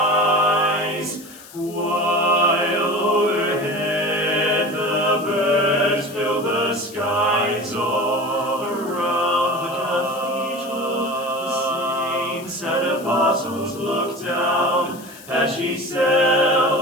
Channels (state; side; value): noise; left; hiss, 19 dB below the sound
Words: While overhead the birds fill the skies all around the cathedral. The saints and apostles look down as she